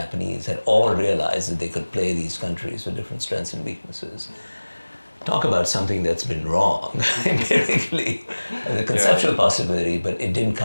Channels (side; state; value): both; inverted; correlation -1.00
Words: had all realized that they could play these countries with different strengths and weaknesses. Talk about something that's been wrong empirically, the conceptual possibility, but it didn't